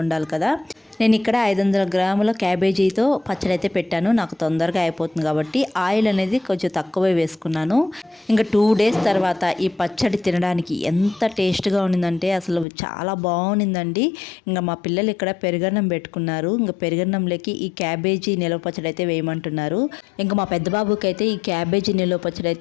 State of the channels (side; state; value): right; drops out; at 12.7 s